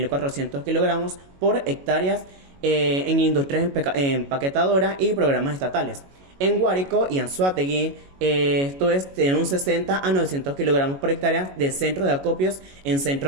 kilogramos por hectáreas en industrias empaquetadoras y programas estatales. En Guárico y Anzoátegui, esto es de un 60 a 900 kilogramos por hectárea de centro de acopios en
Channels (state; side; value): late; left; 22 ms